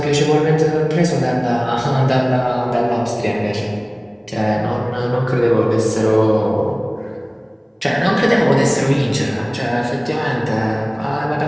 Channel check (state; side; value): identical; both; correlation 1.00